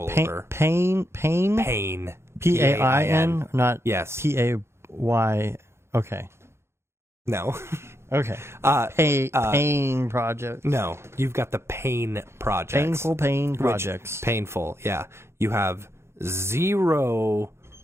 over. Pain? Pain. P-A-I-N? Not yes. P-A-Y. Okay. No. Okay. Pain projects. No. You've got the pain projects. Painful pain projects. Painful, yeah. You have zero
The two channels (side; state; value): left; late; 0.13 ms